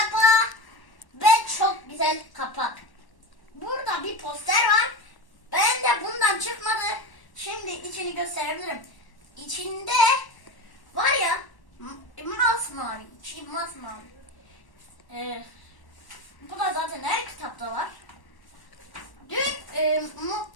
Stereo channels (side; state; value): right; late; 1.1 ms